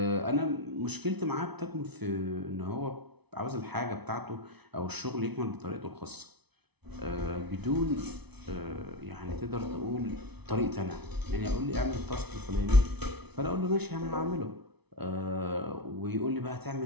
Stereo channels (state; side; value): late; left; 0.99 ms